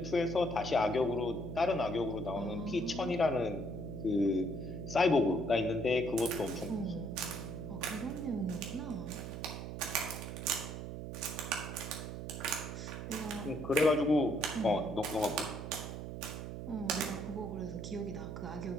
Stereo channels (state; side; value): noise; right; hum, 7 dB below the sound